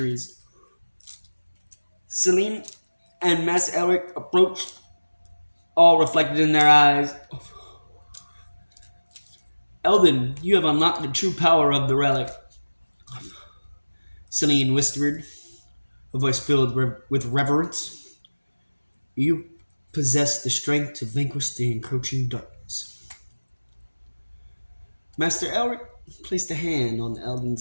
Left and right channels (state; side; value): inverted; both; correlation -1.00